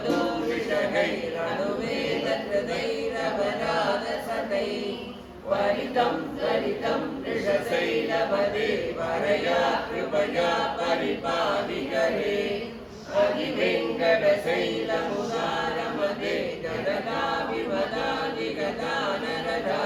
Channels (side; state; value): both; identical; correlation 1.00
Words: दूषिषगैरनुवेदहृदैरवराधसतै वरितं त्वरितं वृषशैलपते वरया कृपया परिपालिकरे अधिवेङ्कटशैलमुदारमते